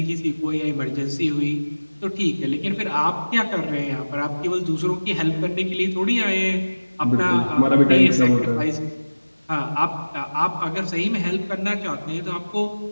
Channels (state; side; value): inverted; both; correlation -1.00